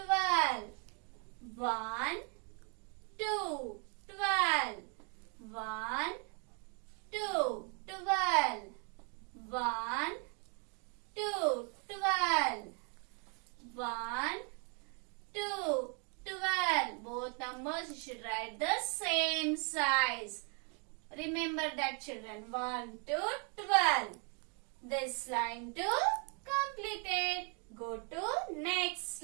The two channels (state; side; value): quieter; left; 37.3 dB